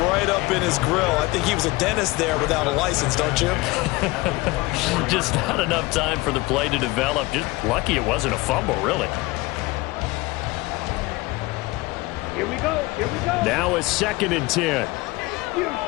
right up in his grill. I think he was a dentist there without a license, don't you? Just not enough time for the play to develop. Just lucky it wasn't a fumble, really. Here we go. Here we go. Now it's 2nd and 10. You,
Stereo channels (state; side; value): quieter; right; 21.8 dB